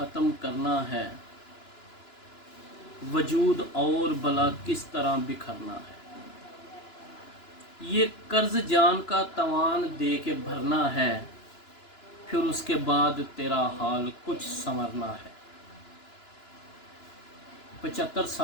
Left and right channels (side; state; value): right; late; 2.9 ms